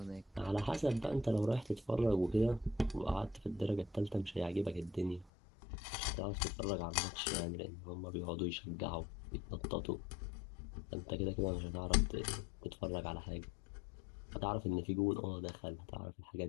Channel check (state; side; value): drops out; right; at 5.3 s